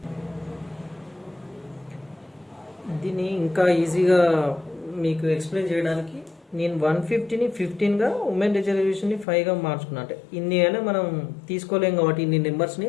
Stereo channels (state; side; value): drops out; right; at 9.2 s